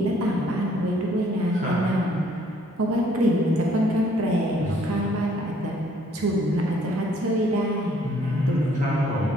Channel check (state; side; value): normal; both; correlation 0.63